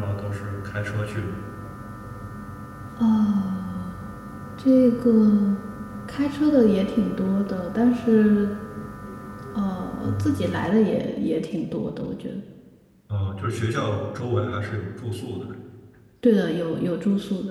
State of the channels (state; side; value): identical; both; correlation 1.00